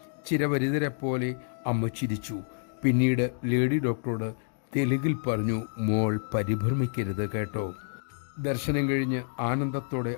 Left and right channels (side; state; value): right; silent; digital silence